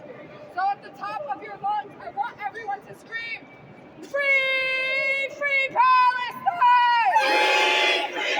So at the top of your lungs, I want everyone to scream, free, free Palestine! Free,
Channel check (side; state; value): both; identical; correlation 1.00